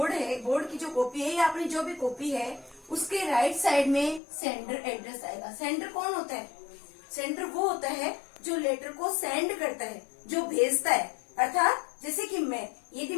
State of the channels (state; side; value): drops out; right; at 4.2 s